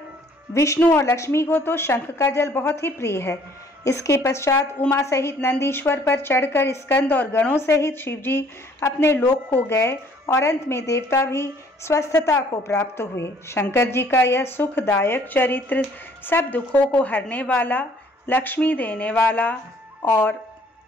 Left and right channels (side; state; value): both; normal; correlation 0.59